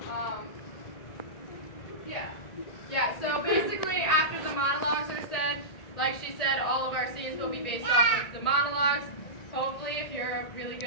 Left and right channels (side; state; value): right; late; 1.8 ms